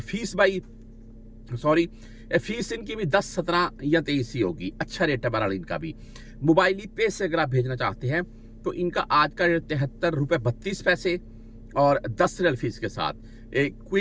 भाई फीस इनकी भी 10, 17 या 23 ही होगी। अच्छा रेट है बहरहाल इनका भी। मोबाइली पे से अगर आप भेजना चाहते हैं तो इनका आज का रेट 73 रुपये 32 पैसे और 10 रियाल फीस के साथ।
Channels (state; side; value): identical; both; correlation 1.00